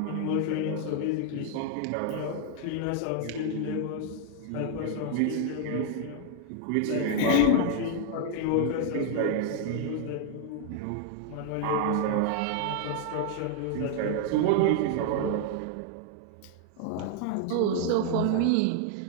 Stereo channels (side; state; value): both; different; correlation 0.00